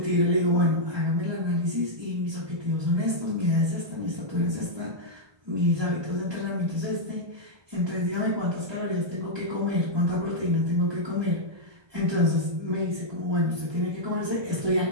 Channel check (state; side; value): late; left; 1.2 ms